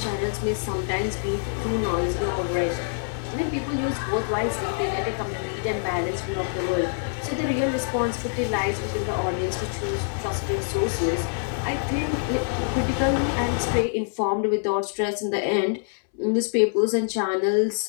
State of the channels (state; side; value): silent; right; 61 dB below the other